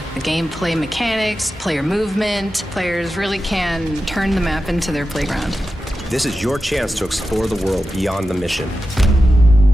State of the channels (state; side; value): normal; both; correlation 0.91